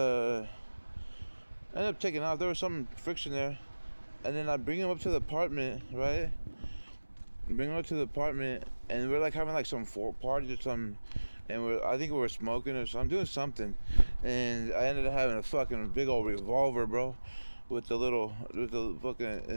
ended up taking off. There was some friction there, and then I bring him up to the apartment, right? Bring him up to the apartment, and we're like having like some party or something, and I think we were smoking or something, doing something, and I ended up having a fucking big old revolver, bro, with the fucking,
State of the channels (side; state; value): both; inverted; correlation -1.00